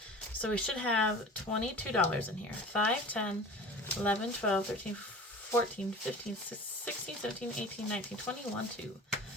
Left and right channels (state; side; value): normal; both; correlation 0.39